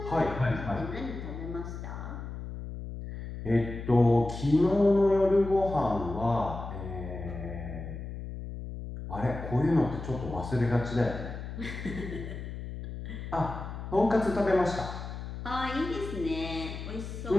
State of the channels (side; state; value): left; noise; hum, 8 dB below the sound